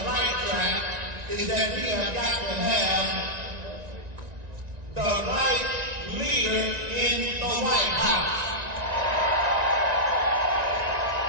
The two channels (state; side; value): late; left; 1.9 ms